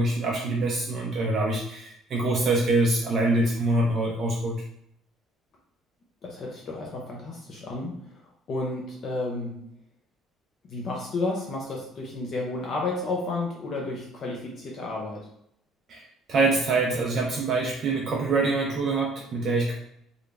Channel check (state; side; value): normal; both; correlation 0.58